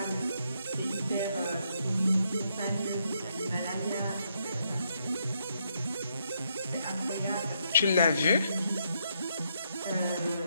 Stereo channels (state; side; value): inverted; both; correlation -0.76